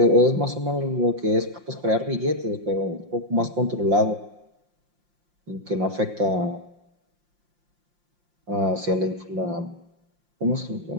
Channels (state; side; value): late; left; 5.7 ms